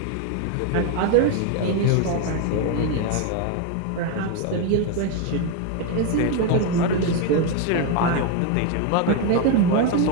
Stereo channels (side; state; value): both; different; correlation 0.02